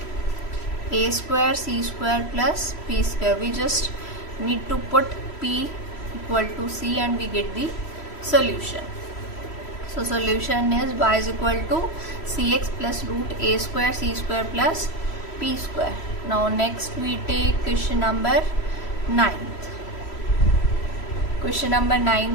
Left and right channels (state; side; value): late; right; 3.1 ms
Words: a square c square plus p square. We just need to put p equal to c and we get the solution. So solution is y is equal to cx plus root a square c square plus p square. Now next we take question number 9th. Question number